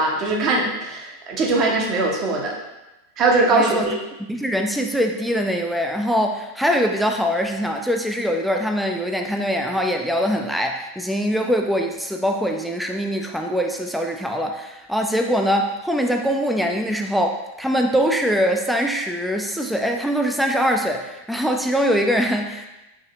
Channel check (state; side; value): normal; both; correlation 0.56